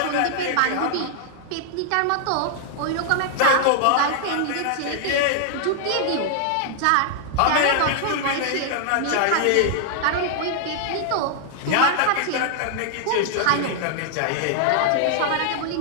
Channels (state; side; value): different; both; correlation 0.00